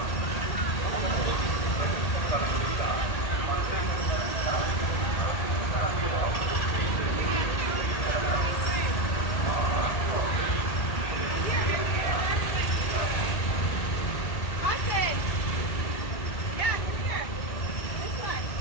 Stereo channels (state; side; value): late; right; 1.8 ms